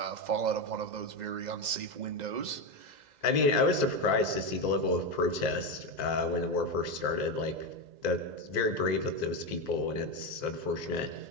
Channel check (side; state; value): left; late; 2.0 ms